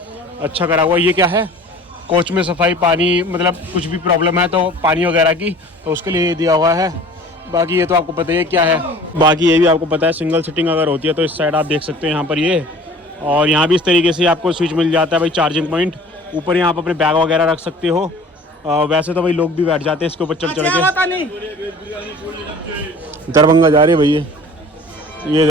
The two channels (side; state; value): both; normal; correlation 0.46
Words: अच्छा करा हुआ। ये क्या है, कोच में सफाई, पानी, मतलब कुछ भी प्रॉब्लम है तो पानी वगैरह की, तो उसके लिए दिया हुआ है। बाकी ये तो आपको पता ही है क्या है। बाकी ये भी आपको पता है, सिंगल सीटिंग अगर होती है तो इस साइड आप देख सकते हैं यहाँ पर ये। और यहाँ भी इस तरीके से आपको स्विच मिल जाता है भाई, चार्जिंग पॉइंट। ऊपर यहाँ पर अपने बैग वगैरह रख सकते हो। वैसे तो भाई लोग भी बैठ जाते हैं इसके ऊपर चढ़ चढ़ के। दरभंगा जा रही है भैया, ये